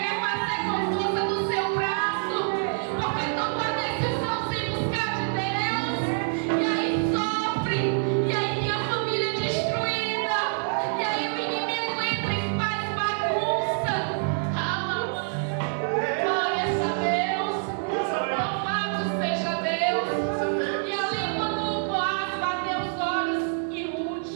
fazer com força do seu braço, porque toma a decisão sem buscar de Deus, e aí sofre, e aí tem a família destruída, e aí o inimigo entra e faz bagunça. Glórias a Deus, louvado seja Deus. E ali quando Boaz bateu os olhos em Ruth,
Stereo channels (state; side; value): silent; left; 61 dB below the other